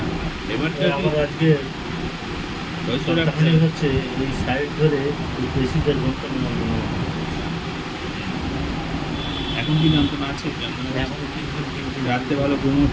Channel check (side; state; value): both; identical; correlation 1.00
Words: এবার আমার আজকে হয়তো সপ্তাহখানেক হচ্ছে এই সাইড ধরে এই পেশিদের যন্ত্রণা এখন কি যন্ত্রণা আছে? যন্ত্রণা এখন রাত্রে ভালো ঘুম